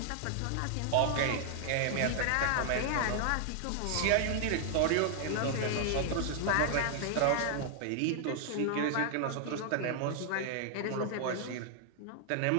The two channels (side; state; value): both; different; correlation 0.00